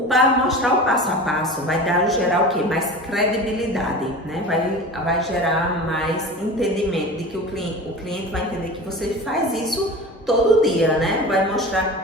Para mostrar o passo a passo vai gerar o quê? Mais credibilidade, né? Vai gerar mais entendimento de que o cliente vai entender que você faz isso todo dia, né? Vai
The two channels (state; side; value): normal; both; correlation 0.34